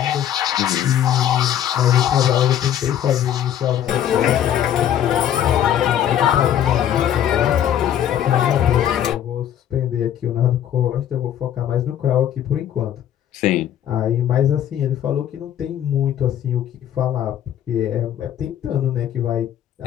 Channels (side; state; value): right; quieter; 10.5 dB